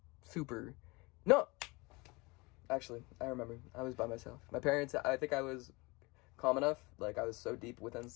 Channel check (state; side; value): quieter; right; 25.2 dB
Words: super. No! Actually, I remember. I was by myself. My parents, I think I was calm enough. Like, I was so deep within